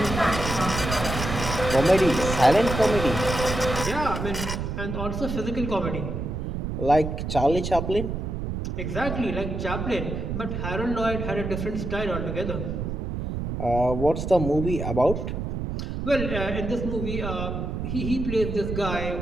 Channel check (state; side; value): noise; right; rumble, 4 dB below the sound